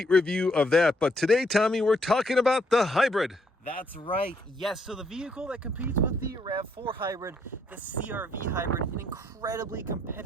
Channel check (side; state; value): both; normal; correlation 0.71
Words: review of that. But today, Tommy, we're talking about the hybrid. That's right. Yes, so the vehicle that competes with the RAV4 hybrid, the CR-V hybrid, an incredibly